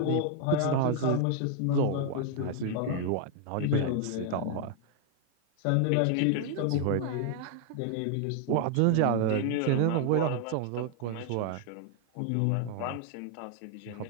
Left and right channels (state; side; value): different; both; correlation 0.00